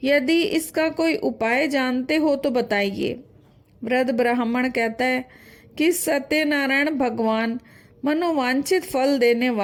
यदि इसका कोई उपाय जानते हो तो बताइए। वृद्ध ब्राह्मण कहता है कि सत्यनारायण भगवान मनोवांछित फल देने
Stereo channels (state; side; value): identical; both; correlation 1.00